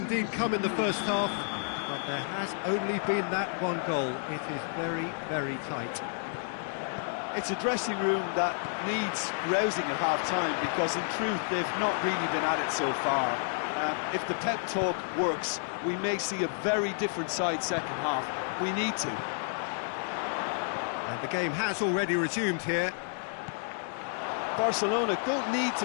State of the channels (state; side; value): silent; right; digital silence